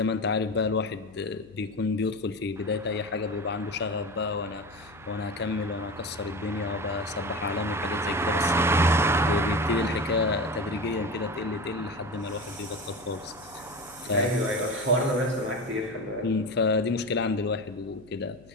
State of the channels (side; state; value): left; noise; hum, 24 dB below the sound